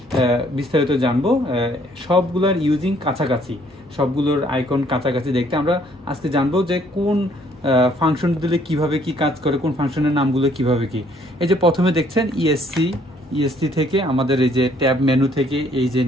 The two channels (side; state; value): both; normal; correlation 0.63